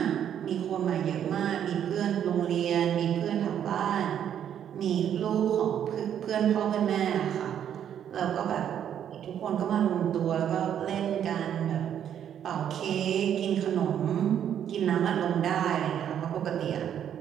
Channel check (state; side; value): quieter; left; 9.5 dB